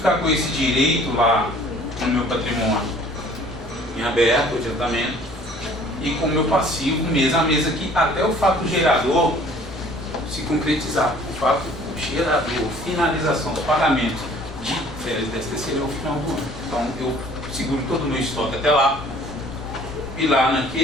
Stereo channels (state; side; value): noise; left; hum, 23 dB below the sound